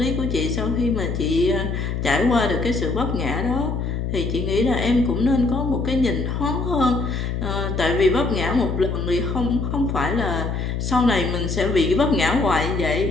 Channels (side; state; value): left; noise; hum, 2 dB below the sound